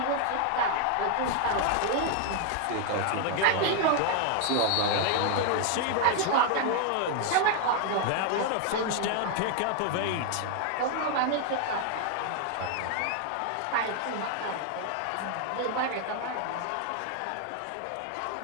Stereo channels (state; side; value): different; both; correlation 0.00